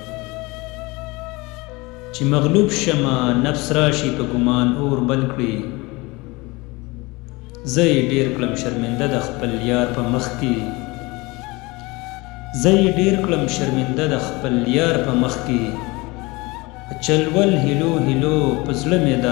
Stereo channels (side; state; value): right; quieter; 23.8 dB